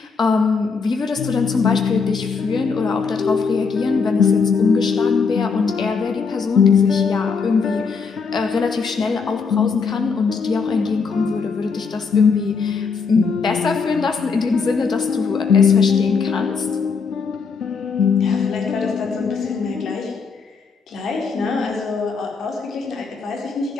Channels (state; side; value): quieter; right; 5.2 dB